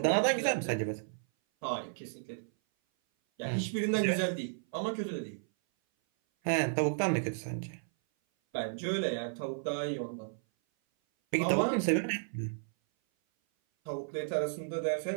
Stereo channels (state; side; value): silent; left; 56 dB below the other